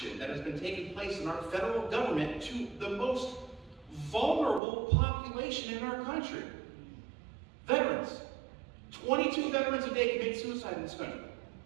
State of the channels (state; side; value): drops out; left; at 4.6 s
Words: that has been taking place in our federal government to the most vulnerable population in our country. Veterans. 22 veterans a day commit suicide in this country.